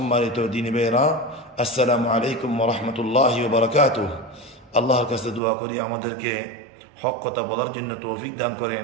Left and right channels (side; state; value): left; drops out; at 5.4 s